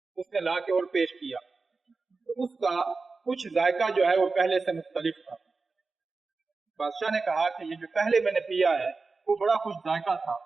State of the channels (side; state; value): left; quieter; 4.1 dB